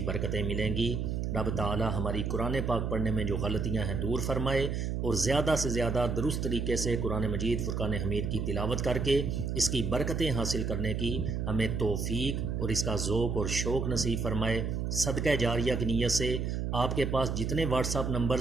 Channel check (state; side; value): noise; right; hum, 1 dB below the sound